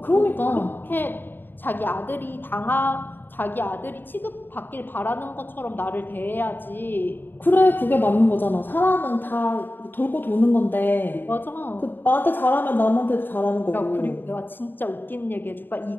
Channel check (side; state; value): right; late; 0.094 ms